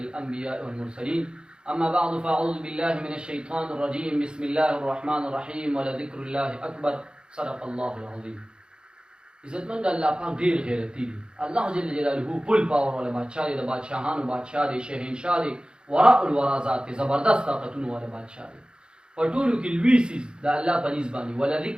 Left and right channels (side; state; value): left; late; 0.050 ms